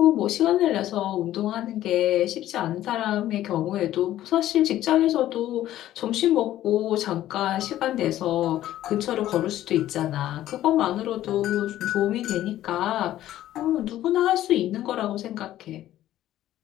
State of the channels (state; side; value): quieter; right; 13.4 dB